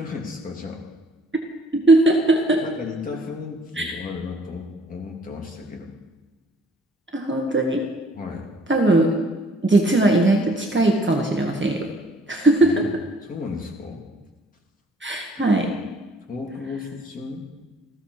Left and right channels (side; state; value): both; normal; correlation 0.59